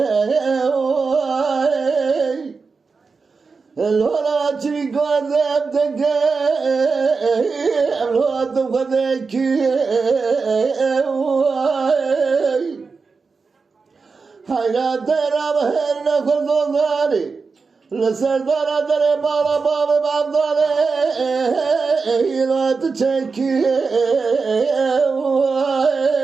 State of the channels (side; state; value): left; quieter; 4.7 dB